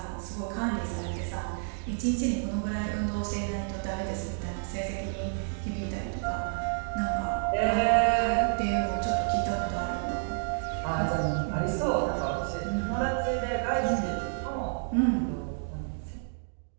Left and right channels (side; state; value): left; silent; digital silence